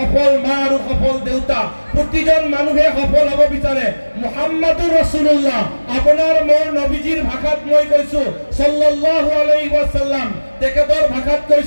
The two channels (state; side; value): inverted; both; correlation -1.00